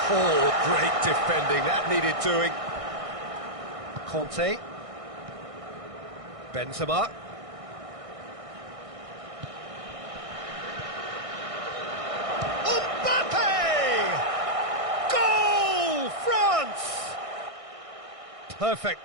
Oh, great defending, that needed doing. Conte. Benzema. Perfect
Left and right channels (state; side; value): late; left; 1.6 ms